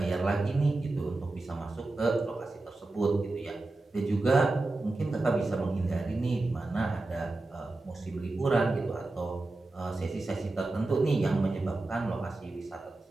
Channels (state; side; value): quieter; left; 3.1 dB